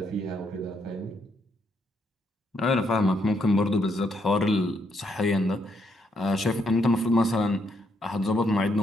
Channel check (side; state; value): both; normal; correlation 0.75